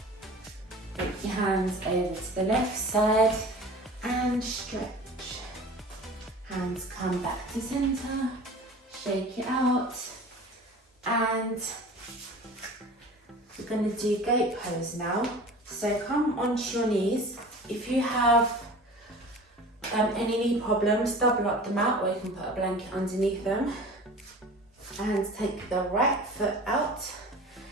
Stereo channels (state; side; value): normal; both; correlation 0.40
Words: Take your hands over to the left side and stretch. Hands come back to center, shake it out, and we're going to do goat pose now. So come onto your knees. If you have any knee problems, double up the mat, or you can put a blanket underneath them. And take the right foot out.